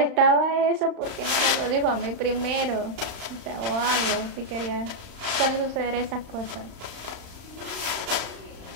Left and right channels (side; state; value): left; late; 35 ms